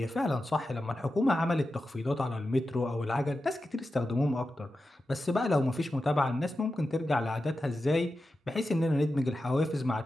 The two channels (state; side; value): normal; both; correlation 0.91